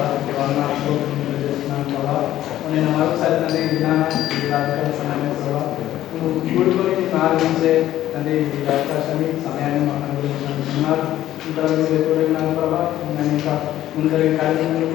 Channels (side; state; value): right; quieter; 13.4 dB